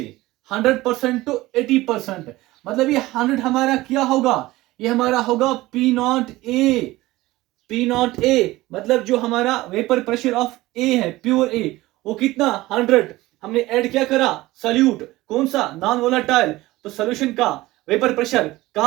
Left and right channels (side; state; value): left; quieter; 18.4 dB